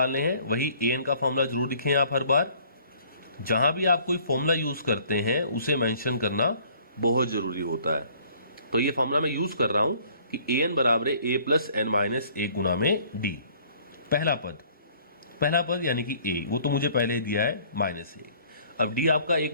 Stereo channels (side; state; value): both; inverted; correlation -0.57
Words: हैं, वही an का फॉर्मूला जरूर लिखें आप हर बार। जहां भी आप कोई फॉर्मूला यूज करते हैं उसे मेंशन करना बहुत जरूरी होता है। तो ये फॉर्मूला मैं यूज कर रहा हूं कि an बराबर है a प्लस n-1 गुना में d। पहला पद यानी कि a, वो तो मुझे पहले ही दिया है -1। अब d आपका